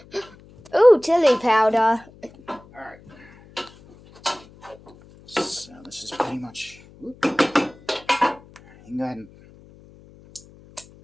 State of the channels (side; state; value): left; noise; hum, 24 dB below the sound